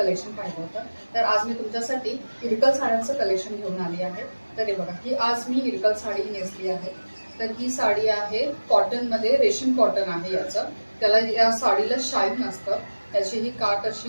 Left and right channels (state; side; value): inverted; both; correlation -1.00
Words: पाहिलं होतं। तर आज मी तुमच्यासाठी इरकल साड्यांचं कलेक्शन घेऊन आली आहे। तर हे बघा, ही आज मी इरकल साडी नेसली आहे। तर ही साडी आहे कॉटनमध्ये, रेशीम कॉटन आहे याचं। त्याला या साडीला शाईन असतं। त्याची ही काठ